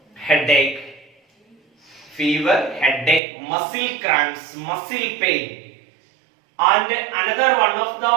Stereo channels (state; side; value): drops out; left; at 3.2 s